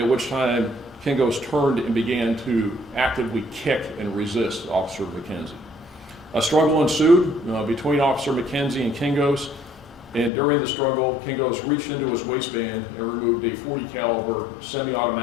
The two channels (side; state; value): right; drops out; at 10.3 s